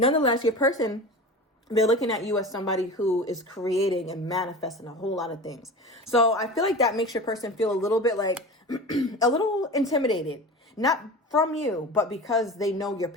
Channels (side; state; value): both; normal; correlation 0.33